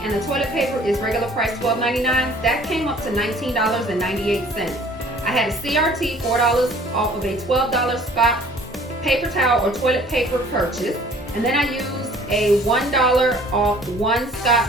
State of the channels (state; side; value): normal; both; correlation 0.53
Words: and the toilet paper is regular price $12.99. That came up to $19.98. I had a CRT, $4 off of a $12 Scott paper towel or toilet paper purchase, and then I used a $1 off 1 Scott